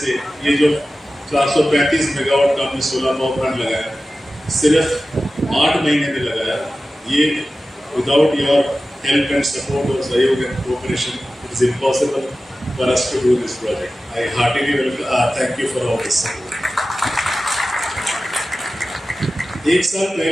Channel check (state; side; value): normal; both; correlation 0.95